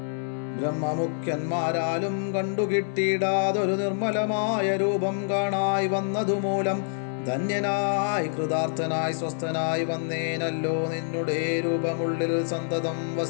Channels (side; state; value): right; silent; 61 dB below the other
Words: ബ്രഹ്മമുഖ്യന്മാരാലും കണ്ടുകിട്ടിയിടാതൊരു നിർമ്മലമായ രൂപം കാണായി വന്നതുമൂലം ധന്യനായി കൃതാർത്ഥനായി സ്വസ്ഥനായി വന്നേനല്ലോ. നിന്നുടെ രൂപമുള്ളിൽ സന്തതം